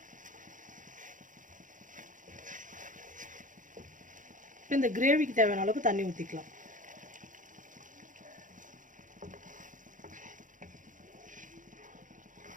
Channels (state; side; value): late; left; 0.37 ms